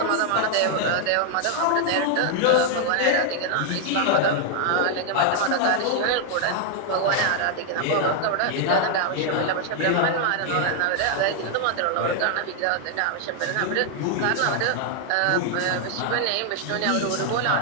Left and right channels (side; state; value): both; different; correlation 0.00